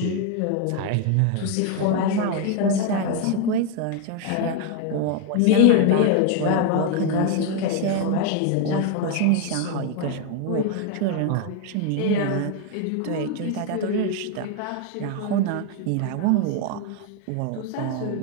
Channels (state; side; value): different; both; correlation 0.01